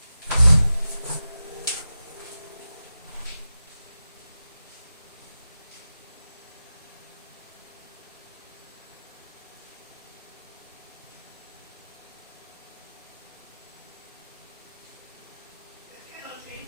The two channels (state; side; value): inverted; both; correlation -0.93